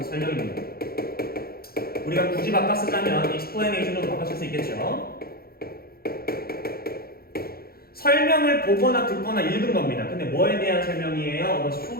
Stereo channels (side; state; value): right; late; 0.44 ms